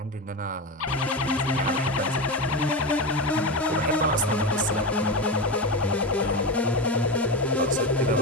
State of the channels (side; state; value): both; normal; correlation 0.19